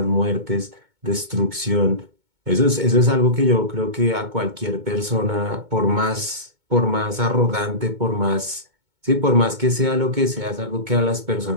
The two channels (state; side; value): late; left; 2.2 ms